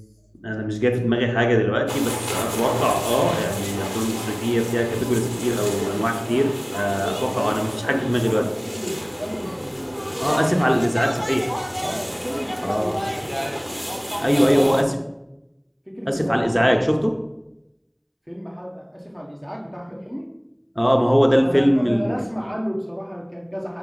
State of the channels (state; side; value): identical; both; correlation 1.00